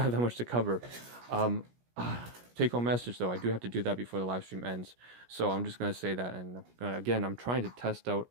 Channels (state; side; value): late; left; 17 ms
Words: that much to cover. Take home message though, I do have to do that before the live stream ends, so I'm just going to say that. And again, I'm trying to test out